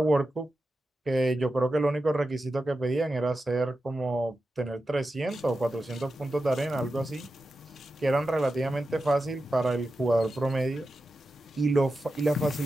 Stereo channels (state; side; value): normal; both; correlation 0.91